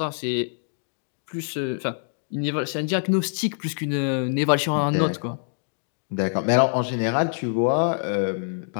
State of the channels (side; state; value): right; silent; digital silence